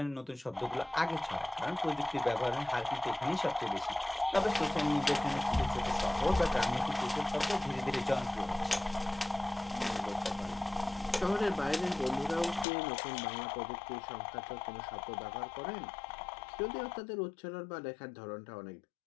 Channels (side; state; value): right; drops out; at 12.7 s